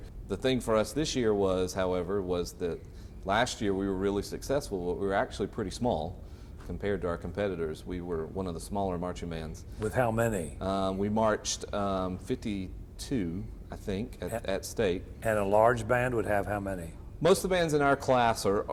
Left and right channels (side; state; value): both; identical; correlation 1.00